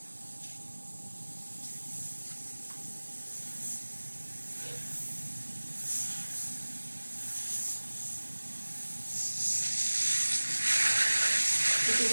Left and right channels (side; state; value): both; inverted; correlation -1.00